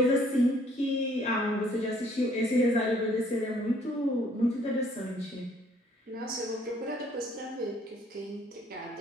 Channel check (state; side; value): normal; both; correlation 0.61